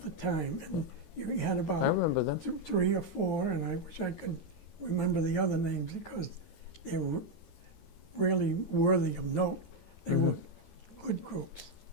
the time. And you had I about remember them. 3 or 4, and I wish I could remember the other names because they were really worthy of note. They were good groups.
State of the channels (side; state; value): right; late; 13 ms